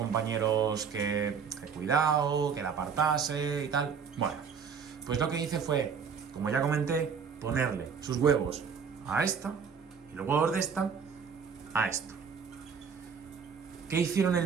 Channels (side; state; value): left; quieter; 6.4 dB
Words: que cuidado, que la apartase y tal. Bueno, pues lo que hice fue, como ya comenté, ponerle sus huevos a esta y los huevos de esta a esta. ¿Qué hicieron